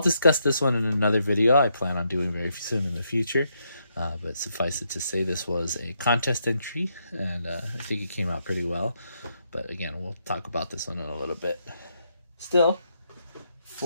this one in another video I plan on doing very soon in the future. But suffice it to say, this was a contest entry, and I think it came out pretty well. But again, we'll talk about this one in a little bit. Still,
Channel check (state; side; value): inverted; both; correlation -0.78